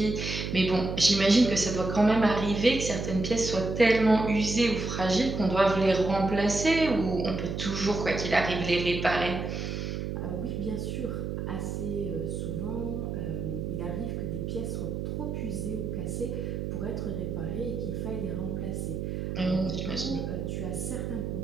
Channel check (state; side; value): noise; right; hum, 4 dB below the sound